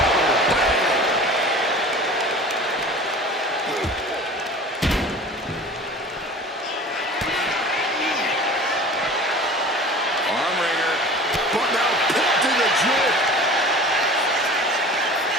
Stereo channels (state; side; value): normal; both; correlation 0.40